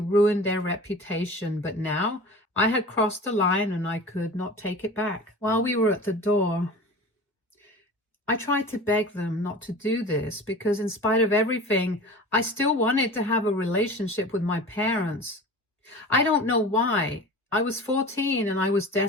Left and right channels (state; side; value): normal; both; correlation 0.36